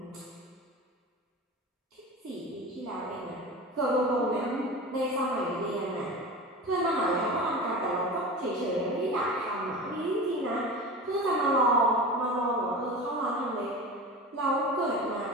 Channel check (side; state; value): both; normal; correlation 0.31